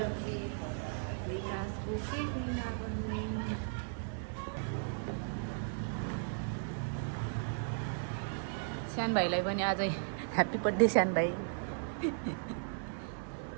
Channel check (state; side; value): silent; left; digital silence